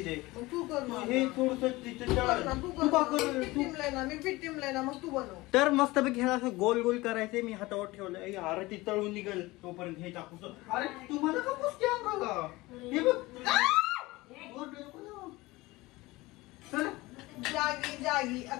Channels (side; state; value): right; quieter; 20.6 dB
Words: मग तू कर ना. हे थोडस तिथे तू कर ना, तू का कर मी पीठ टिमलंय ना, मी पीठ टिमलंय ना, मग तू बनव. तर मस्तपैकी ह्याला असं गोल गोल करायचे. मी हातावर ठेवलं. अरे ती तळून निघेल तोपर्यंत हे टाकू. अरे तुम्हाला का पुसते अंगाला? हे बघ चल. जागी जागी